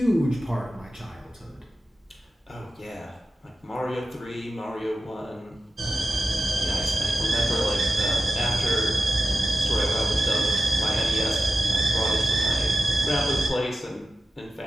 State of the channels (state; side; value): normal; both; correlation 0.93